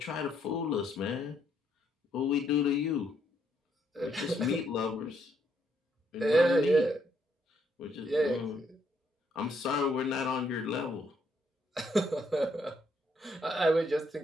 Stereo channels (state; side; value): normal; both; correlation 0.72